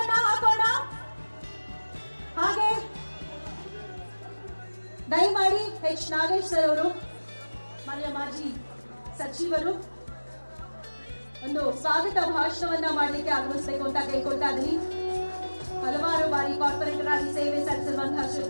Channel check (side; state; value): both; inverted; correlation -1.00